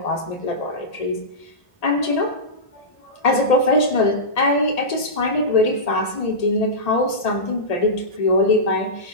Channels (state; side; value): late; right; 1.8 ms